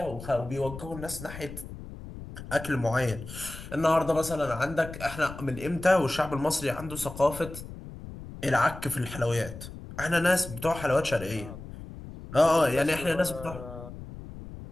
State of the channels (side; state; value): left; noise; rumble, 12 dB below the sound